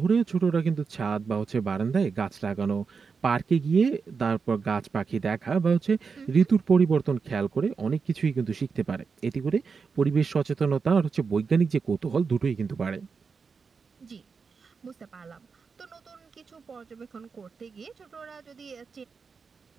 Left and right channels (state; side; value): quieter; left; 5.3 dB